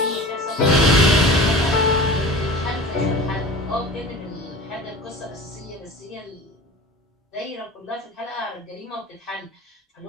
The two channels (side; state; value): both; normal; correlation 0.37